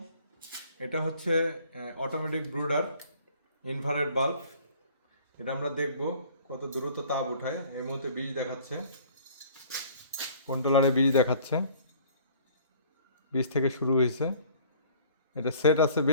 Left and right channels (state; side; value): inverted; both; correlation -0.53